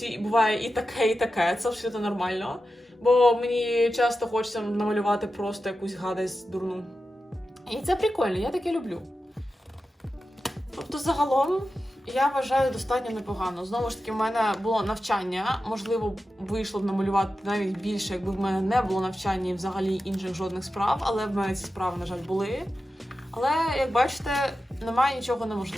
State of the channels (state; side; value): normal; both; correlation 0.92